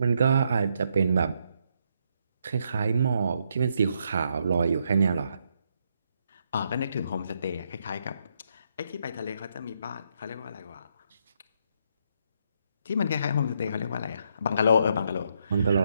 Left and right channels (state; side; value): inverted; both; correlation -0.76